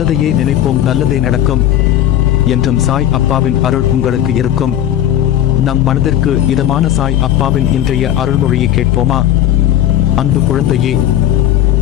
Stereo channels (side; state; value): right; quieter; 11.6 dB